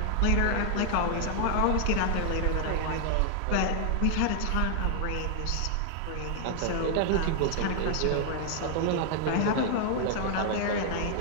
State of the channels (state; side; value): different; both; correlation 0.00